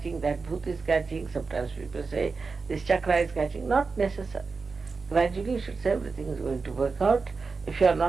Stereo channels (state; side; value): quieter; left; 4.5 dB